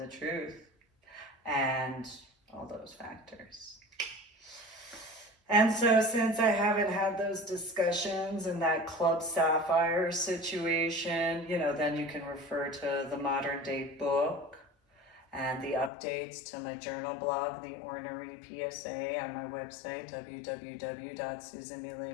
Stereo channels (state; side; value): drops out; right; at 15.9 s